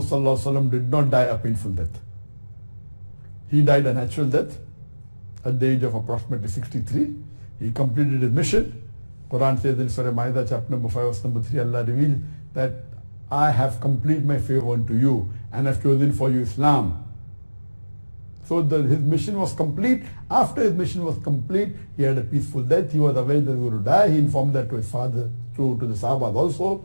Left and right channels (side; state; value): both; inverted; correlation -1.00